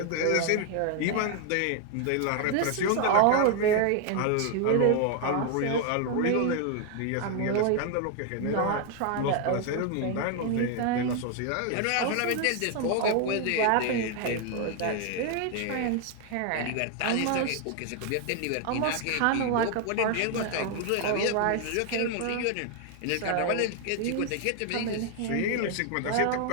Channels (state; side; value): different; both; correlation 0.00